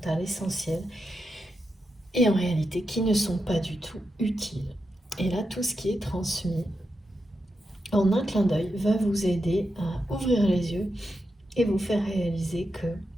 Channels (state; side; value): normal; both; correlation 0.87